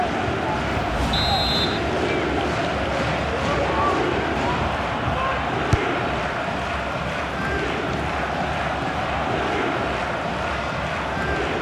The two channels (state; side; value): identical; both; correlation 1.00